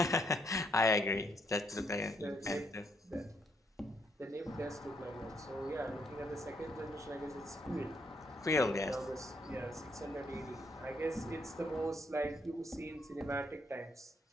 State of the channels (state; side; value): normal; both; correlation 0.74